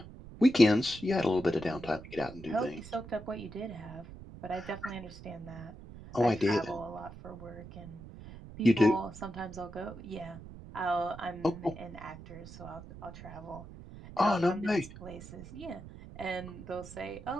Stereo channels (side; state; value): right; noise; rumble, 15 dB below the sound